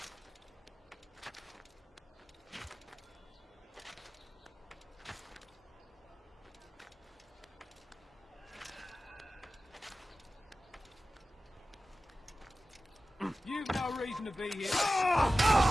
You've no reason to be here.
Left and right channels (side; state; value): both; normal; correlation 0.96